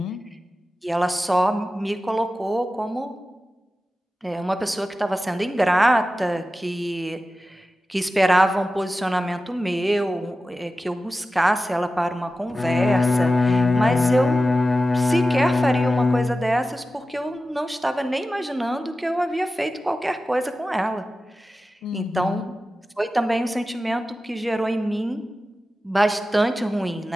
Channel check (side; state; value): both; normal; correlation 0.94